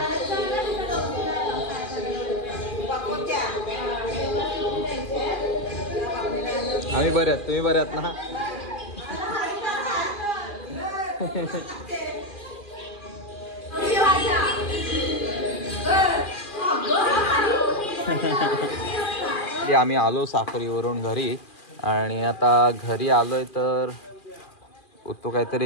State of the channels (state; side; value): late; right; 2.4 ms